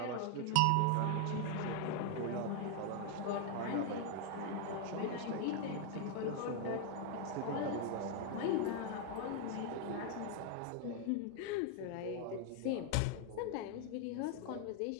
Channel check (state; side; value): different; both; correlation 0.00